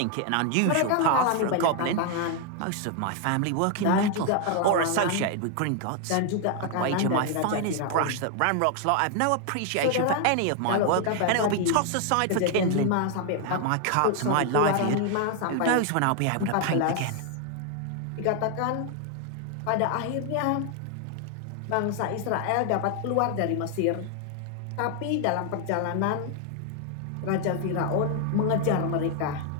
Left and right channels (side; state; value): both; different; correlation 0.00